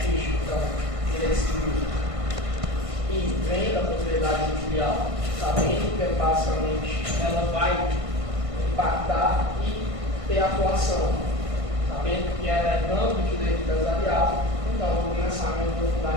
então, direito civil, e vem da propriedade industrial, sabendo que basicamente ela vai impactar e ter atuação, sabendo que ela é ramo do direito empresarial, então vou começar a me aprofundar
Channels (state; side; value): late; left; 1.5 ms